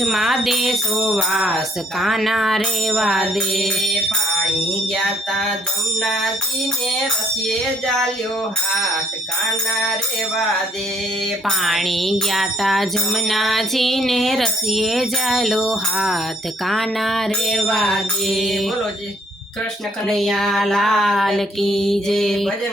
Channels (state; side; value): normal; both; correlation 0.64